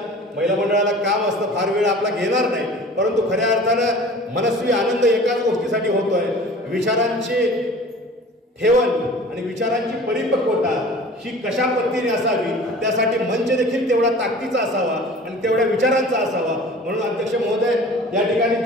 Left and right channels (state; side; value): normal; both; correlation 0.43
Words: महिला मंडळाला काम असतं, फार वेळ आपला घेणार नाही, परंतु खऱ्या अर्थानं मनस्वी आनंद एकाच गोष्टीसाठी होतोय. विचारांची ठेवण आणि विचारांची परिपक्वता ही कशा पद्धतीने असावी, त्यासाठी मंच देखील तेवढा ताकदीचा असावा आणि तेवढ्या विचारांचा असावा. म्हणून अध्यक्ष महोदय, या ठिकाणी